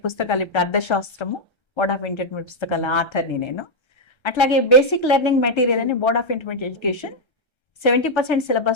పుస్తకాలు ఇప్పుడు అర్థశాస్త్రము బోర్డ్ ఆఫ్ ఇంటర్మీడియట్ పుస్తకాల ఆథర్ని నేను. అట్లాగే బేసిక్ లెర్నింగ్ మెటీరియల్ అని బోర్డ్ ఆఫ్ ఇంటర్మీడియట్ ఎడ్యుకేషన్ 70%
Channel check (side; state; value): right; late; 1.3 ms